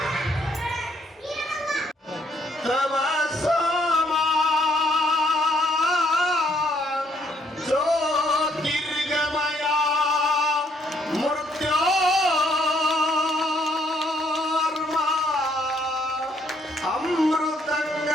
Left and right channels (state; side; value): normal; both; correlation 0.68